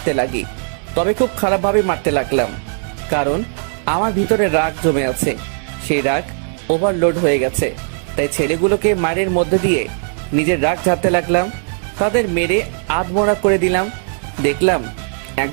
লাগি। তবে খুব খারাপভাবে মারতে লাগলাম, কারণ আমার ভিতরে রাগ জমে আছে। সেই রাগ ওভারলোড হয়ে গেছে, তাই ছেলেগুলোকে মারের মধ্যে দিয়ে নিজের রাগ ঝাড়তে লাগলাম। তাদের মেরে আধমোড়া করে দিলাম। দেখলাম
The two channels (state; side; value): silent; left; 66 dB below the other